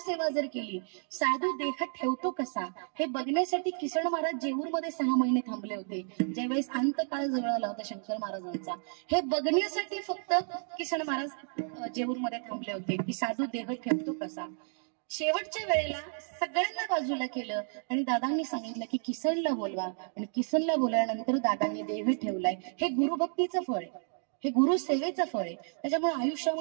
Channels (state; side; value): silent; left; 57 dB below the other